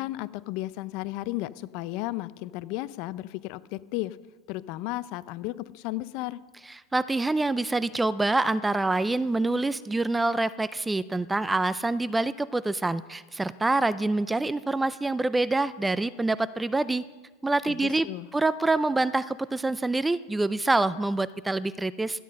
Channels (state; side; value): normal; both; correlation 0.88